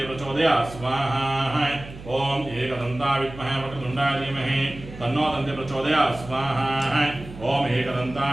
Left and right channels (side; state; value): right; noise; hum, 15 dB below the sound